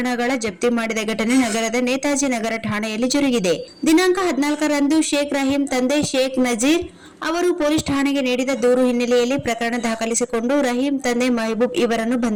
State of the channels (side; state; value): both; identical; correlation 1.00